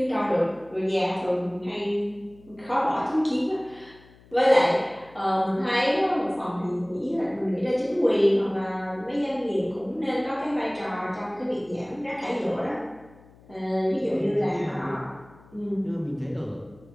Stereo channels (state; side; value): noise; left; hum, 25 dB below the sound